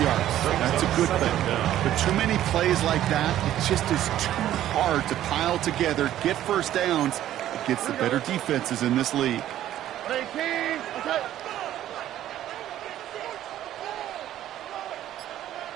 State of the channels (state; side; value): quieter; left; 12.5 dB